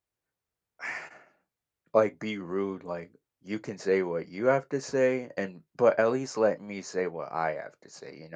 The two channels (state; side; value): identical; both; correlation 1.00